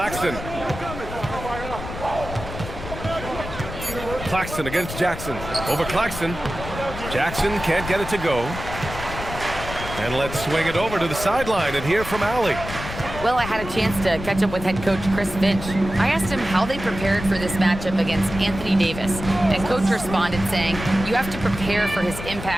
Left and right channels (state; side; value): noise; left; rumble, 9 dB below the sound